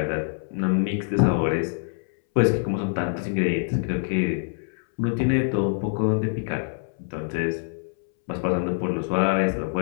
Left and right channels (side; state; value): right; silent; 62 dB below the other